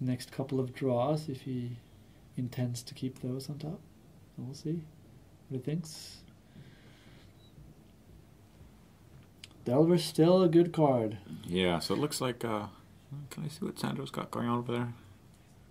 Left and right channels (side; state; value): both; identical; correlation 1.00